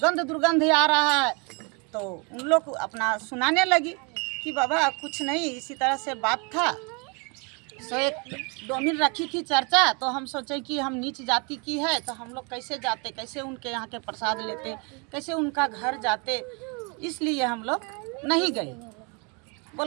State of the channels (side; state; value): left; quieter; 32.8 dB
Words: आ रहा है। तो उन लोग अपना सुनाने लगी कि बाबा कुछ नहीं, इसी तरह से बात था। सो एक डोमिन रखी थी चर्चा, तो हम सोचे कि हम नीच जाति की है तो हम लोग कैसे जाते, कैसे उनके यहाँ के प्रसाद लेते, कैसे उनका घर जाते, इसलिए हम लोग नहीं गए।